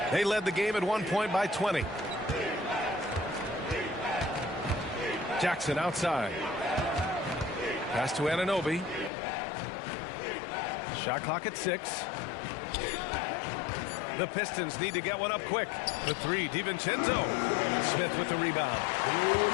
They led the game at one point by 20. Jackson outside. Pass to Anunoby. Shot clock at 6. The Pistons need to get one up quick. The 3, DiVincenzo. Smith with the rebound.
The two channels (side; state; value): right; drops out; at 9.1 s